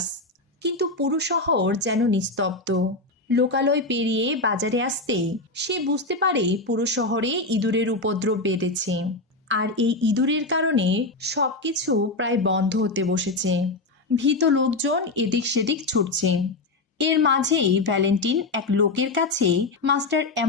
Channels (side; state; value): right; quieter; 3.0 dB